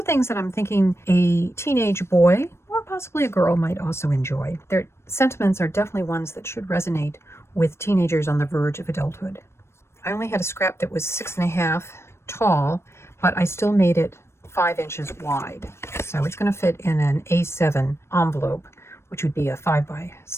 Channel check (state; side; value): late; right; 0.13 ms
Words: things that I'm thinking a teenage boy or possibly a girl might also enjoy. Their sentiments are definitely ones that should resonate with teenagers on the verge of adulthood. I only had a scrap that was 6.5 tall, but I still made it 5 inches wide. So it's going to fit in an A7 envelope, which would be a